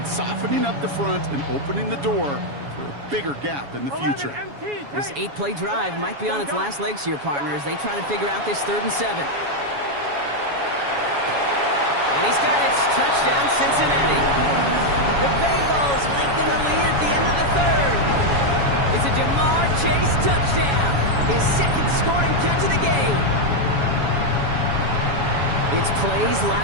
softening up the front and opening the door for a bigger gap in the future. This 8-play drive might be on its last legs here, partners. They try to figure out this 3rd and 7. And he's got it. Touchdown, Cincinnati. The Bengals lengthen the lead at the end of the 3rd. It's a Jamar Chase touchdown. His second scoring catch of the game. It's plays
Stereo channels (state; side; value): late; left; 7.1 ms